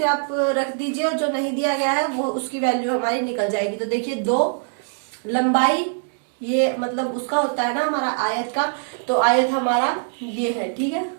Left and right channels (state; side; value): silent; left; digital silence